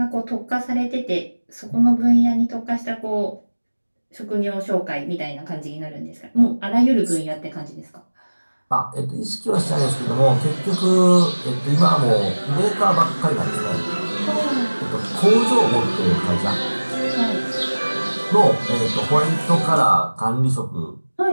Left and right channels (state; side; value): inverted; both; correlation -1.00